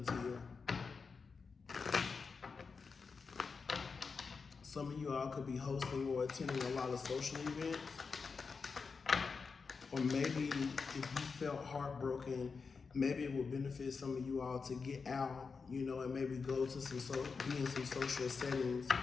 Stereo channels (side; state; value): right; quieter; 5.0 dB